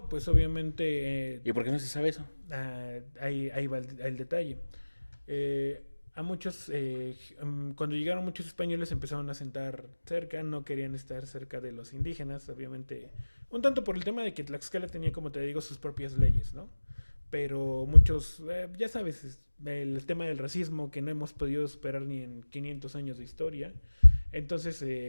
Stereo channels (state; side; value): inverted; both; correlation -1.00